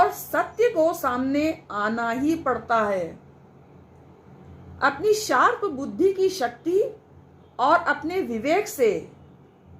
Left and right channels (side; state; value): both; identical; correlation 1.00